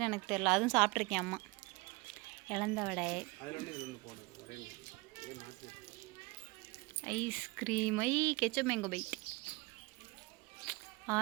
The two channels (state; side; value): quieter; left; 25.0 dB